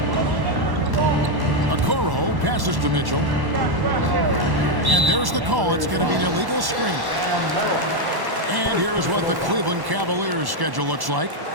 Okoro passes to Mitchell. And there's the call. It's going to be an illegal screen. And here's what the Cleveland Cavaliers schedule looks like.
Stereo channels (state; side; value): late; left; 1.1 ms